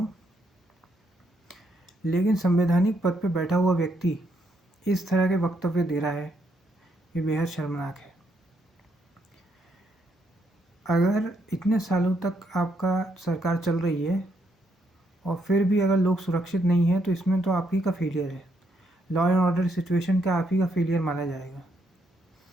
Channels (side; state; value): both; normal; correlation 0.75